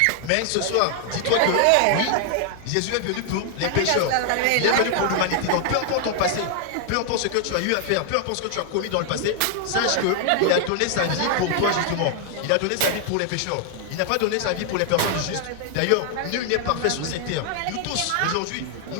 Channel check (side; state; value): both; different; correlation 0.00